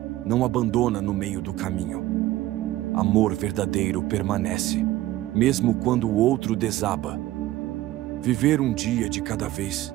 não abandona no meio do caminho. Amor verdadeiro permanece, mesmo quando o outro desaba. Viver um dia de cada vez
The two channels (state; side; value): quieter; left; 15.8 dB